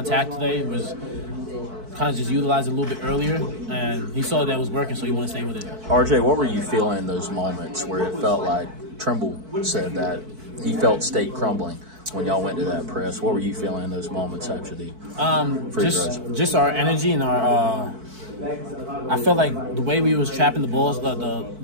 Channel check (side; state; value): left; late; 4.6 ms